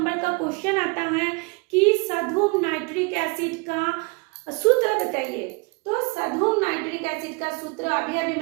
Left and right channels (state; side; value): quieter; left; 29.8 dB